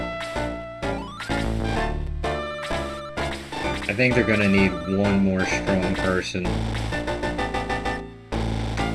I think they're gonna need one more strong person.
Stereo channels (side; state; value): both; identical; correlation 1.00